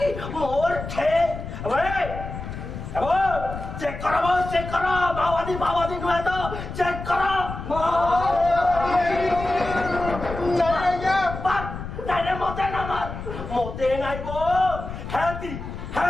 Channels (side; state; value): left; noise; rumble, 9 dB below the sound